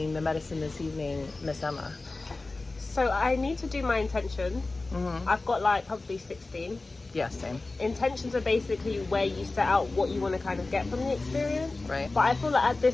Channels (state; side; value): quieter; right; 3.3 dB